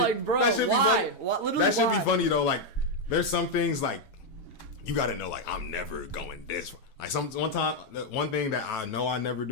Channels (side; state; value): right; late; 9.2 ms